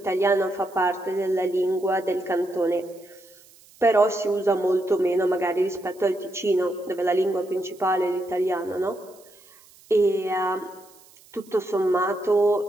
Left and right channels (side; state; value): right; noise; hiss, 26 dB below the sound